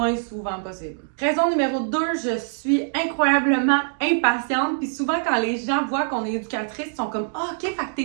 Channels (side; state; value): left; silent; digital silence